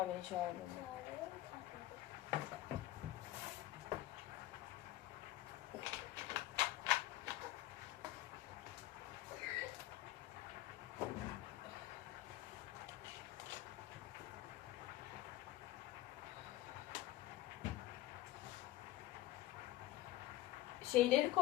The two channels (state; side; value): quieter; right; 15.6 dB